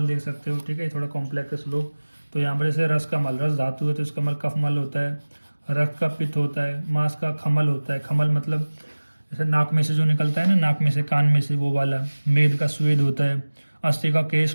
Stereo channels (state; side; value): inverted; both; correlation -1.00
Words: देख सकते हो, ठीक है। थोड़ा कॉम्प्लेक्स श्लोक। तो यहाँ पर जैसे रस का मल, रस धातु है तो इसका मल कफ मल होता है। रक्त का पित्त होता है, मांस का खमल होता है, खमल मतलब जैसे नाक में से जो निकलता है ना, नाक में से कान में से वो वाला। मेद का स्वेद होता है, अस्थि का केश